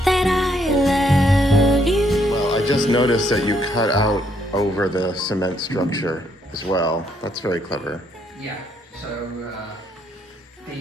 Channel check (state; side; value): normal; both; correlation 0.71